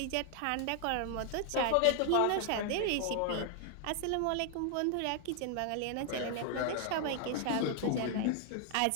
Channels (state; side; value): different; both; correlation 0.00